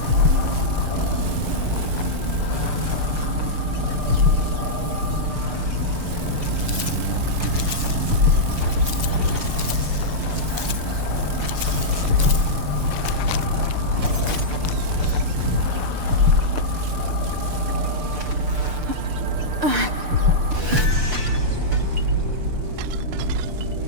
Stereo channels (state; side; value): late; left; 6.7 ms